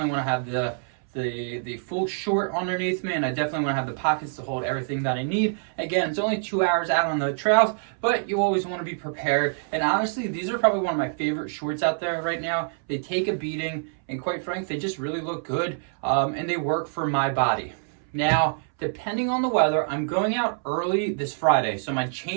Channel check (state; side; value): silent; left; 61 dB below the other